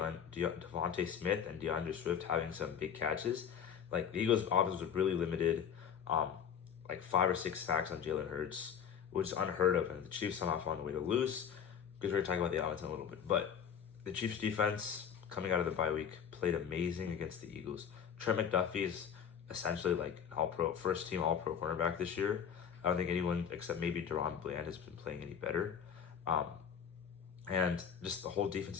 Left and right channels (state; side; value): quieter; right; 7.9 dB